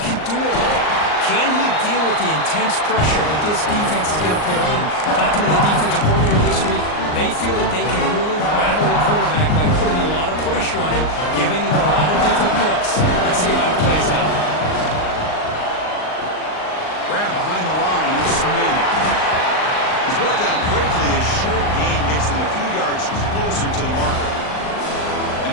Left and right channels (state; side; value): late; right; 39 ms